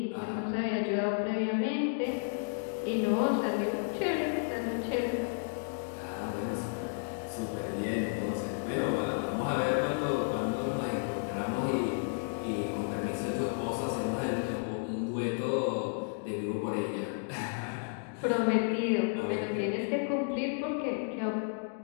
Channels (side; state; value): right; silent; digital silence